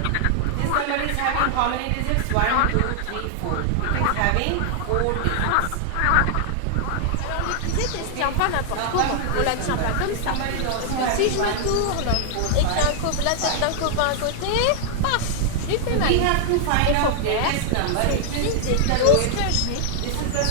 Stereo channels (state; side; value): different; both; correlation 0.00